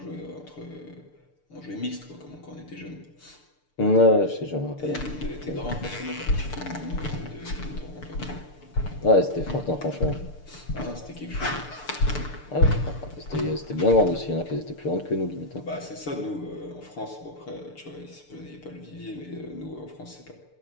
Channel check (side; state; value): right; late; 6.7 ms